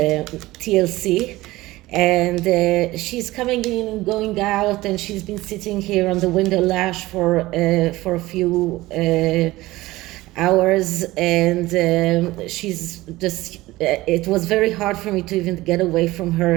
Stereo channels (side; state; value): left; quieter; 18.4 dB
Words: TLC, and she's coming in and going out, and she's been sitting here on the window ledge for a few hours, and she's just it was very hard for me to even get away from